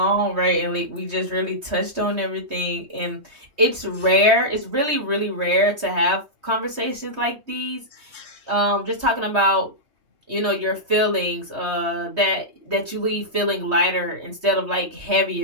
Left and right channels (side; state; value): left; late; 3.2 ms